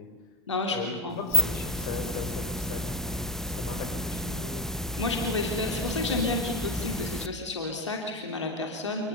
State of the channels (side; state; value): both; normal; correlation 0.12